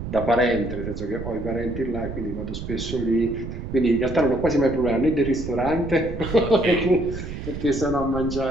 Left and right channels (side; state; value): right; noise; rumble, 8 dB below the sound